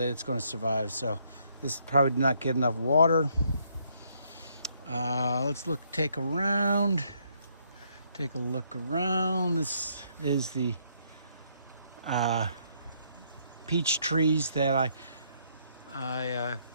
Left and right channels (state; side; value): inverted; both; correlation -0.71